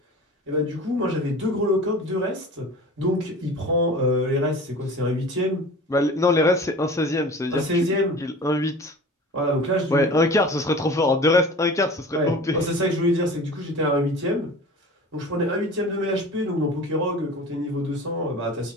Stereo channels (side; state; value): both; normal; correlation 0.39